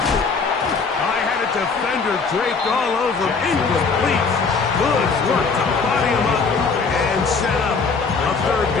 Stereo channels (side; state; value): right; quieter; 4.8 dB